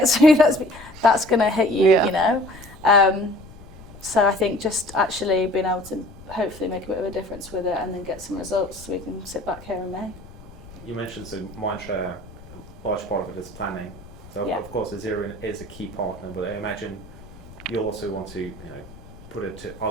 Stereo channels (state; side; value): noise; left; rumble, 19 dB below the sound